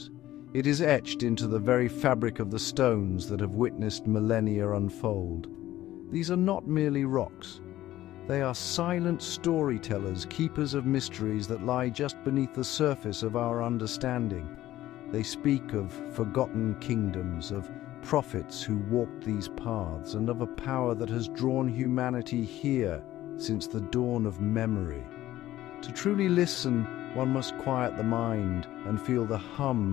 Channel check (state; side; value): quieter; right; 14.5 dB